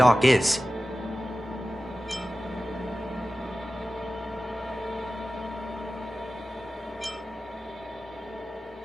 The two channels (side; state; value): both; normal; correlation 0.95